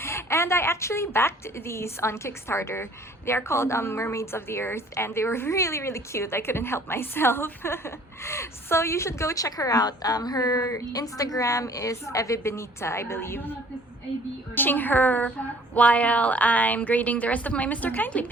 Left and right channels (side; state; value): both; normal; correlation 0.54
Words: and I actually backed these on Kickstarter. They are called Mermaids of the Earth, and they were really cute. I couldn't help myself. So you should go check her out. Her Instagram is Eva Benita, I believe. Watching her while I'm grading the rest of my Mr. Kindly